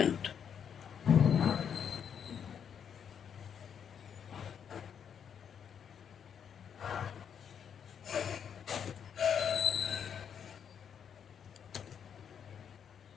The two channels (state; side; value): quieter; right; 7.9 dB